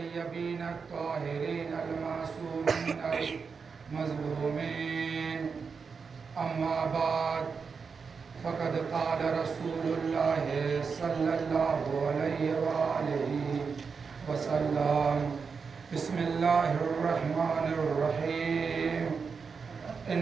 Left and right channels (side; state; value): left; quieter; 5.4 dB